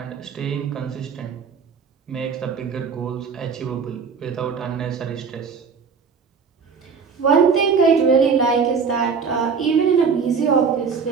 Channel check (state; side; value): quieter; left; 5.8 dB